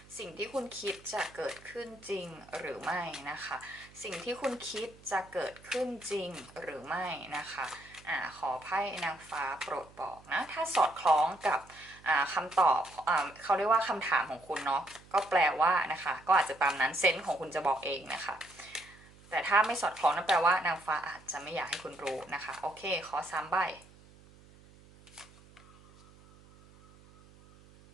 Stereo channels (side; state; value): right; noise; hum, 24 dB below the sound